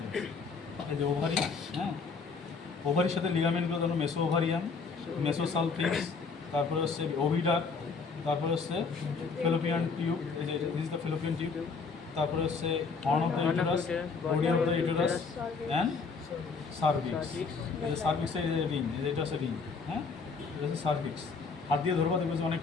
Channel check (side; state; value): right; quieter; 4.8 dB